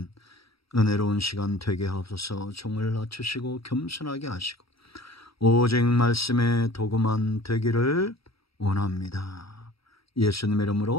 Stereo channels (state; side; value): late; right; 0.76 ms